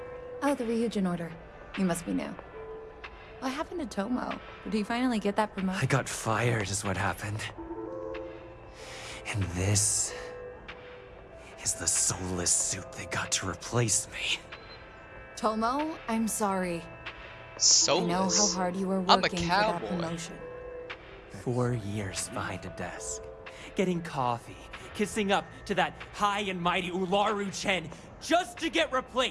Oh, the Ryujin order. You must be new. What happened to Tomo? Did he finally get that promotion? I got fired is what happened. And this is the soulless suit they got to replace me. Tomo, I'm sorry. Soulless? I know how hard you were I'm a working for that cowboy. promotion. 4 years behind a desk, getting coffee, kissing up to that high and mighty Ularu Chen, just to get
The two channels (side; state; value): both; identical; correlation 1.00